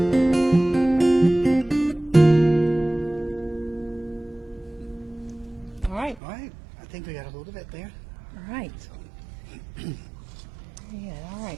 All right. All right. I think we got a hold of it there. All right. Yeah, all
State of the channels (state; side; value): drops out; left; at 6.2 s